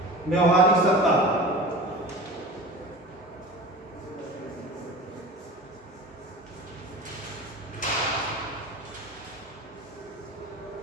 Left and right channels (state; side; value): normal; both; correlation 0.35